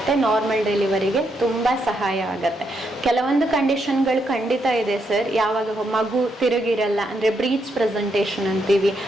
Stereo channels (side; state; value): both; normal; correlation 0.78